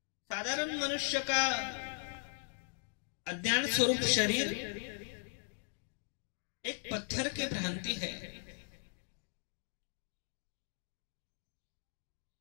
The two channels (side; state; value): right; silent; 52 dB below the other